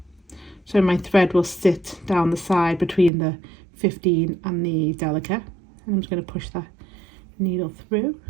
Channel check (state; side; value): drops out; left; at 3.1 s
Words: So my thread will sit down the side between the 15 and the Delica. And I'm just going to push that needle through,